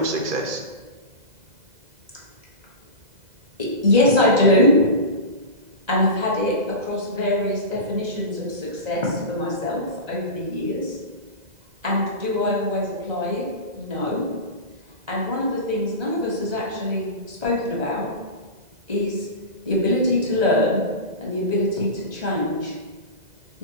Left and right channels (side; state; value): left; late; 2.0 ms